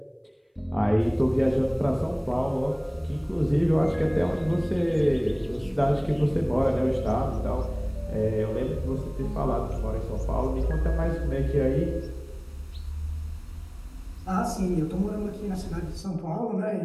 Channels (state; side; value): identical; both; correlation 1.00